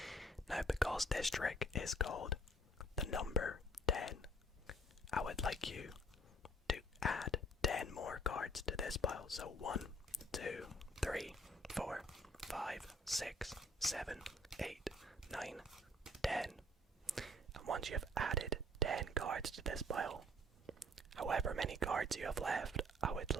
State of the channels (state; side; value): normal; both; correlation 0.58